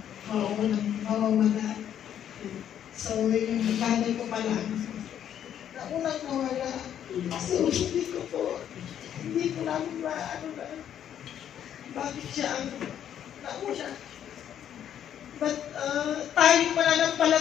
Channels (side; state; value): right; quieter; 9.9 dB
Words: mawawala. So, yung nanay ko pala, naunang nawala. So, hindi ko namin bakit siya ang nauna. But tayong